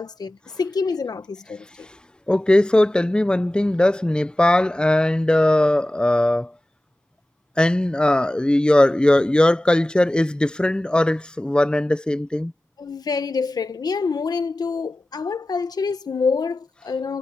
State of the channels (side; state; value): both; normal; correlation 0.96